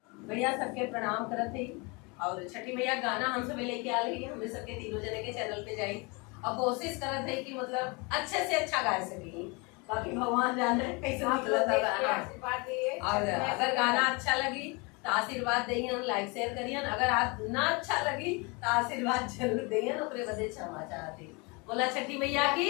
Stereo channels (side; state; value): right; quieter; 29.1 dB